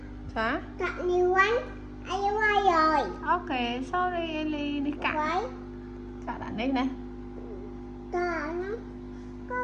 Sao? Cặn nhiều quá. Ai qua rồi. Ok, sorry Ellie. Đi cặn. Cặn ở đây nè. Cặn nó. Có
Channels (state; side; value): identical; both; correlation 1.00